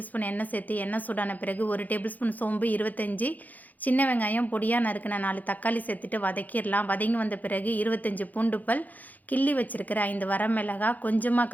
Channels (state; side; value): late; right; 0.081 ms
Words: ஸ்பூன் எண்ணெய் சேர்த்து, எண்ணெய் சூடான பிறகு 1 டேபிள் ஸ்பூன் சோம்பு, 25 சின்ன வெங்காயம், பொடியா நறுக்குன 4 தக்காளி சேர்த்துட்டு வதக்கிடலாம். வதங்கி வந்த பிறகு 25 பூண்டு பல், கிள்ளி வச்சிருக்கிற 5 வரமிளகாய், கொஞ்சமா